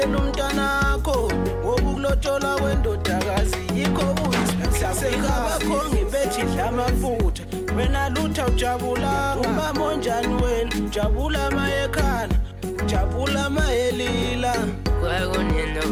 umntanakho ngokulotsholwa kwendodakazi yikho uyisibusisekaka bakho ngiphethe idla amafutha wena lutha ujabulanga mama onjani wena ujabula mayekhala ujabula mayelila. Kwakunini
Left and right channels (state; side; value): identical; both; correlation 1.00